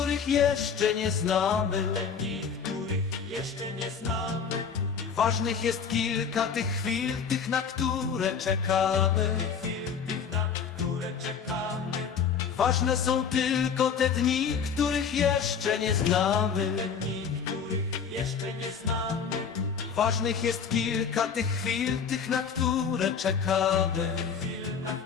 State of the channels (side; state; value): right; quieter; 6.6 dB